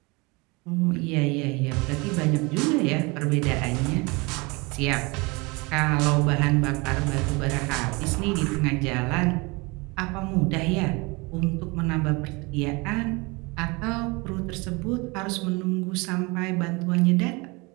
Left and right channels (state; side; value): quieter; left; 26.6 dB